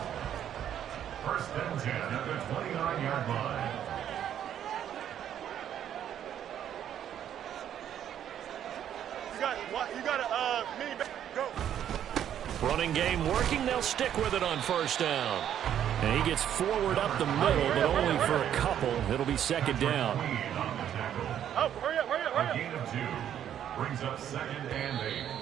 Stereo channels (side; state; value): left; quieter; 10.1 dB